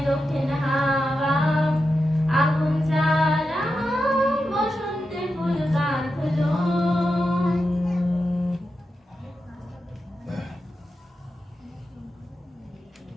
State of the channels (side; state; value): both; normal; correlation 0.89